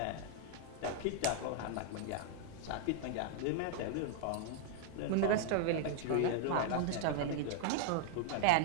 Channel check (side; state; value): both; different; correlation -0.01